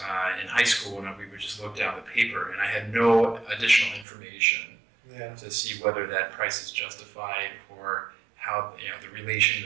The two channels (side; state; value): left; drops out; at 4.0 s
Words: in high school, when we would just look down the paper, and I had no additional information to see whether that price is justified or how the relation,